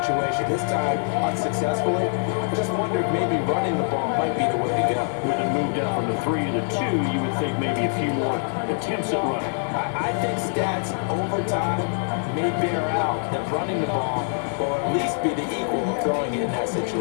This time, unsuccessfully. I just wonder if maybe running the ball might be the way to go. With it moved up from the 3 to the 2, you would think maybe a few more attempts at running. I think stats over time may bear out that running the ball will at least be the equal of throwing it in that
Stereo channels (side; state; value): right; silent; digital silence